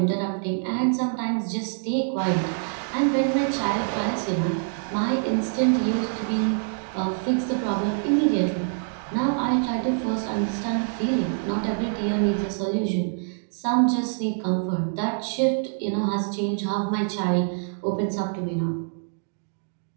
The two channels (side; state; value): left; silent; digital silence